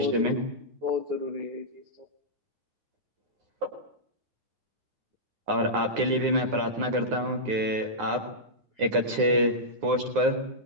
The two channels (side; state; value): left; late; 9.6 ms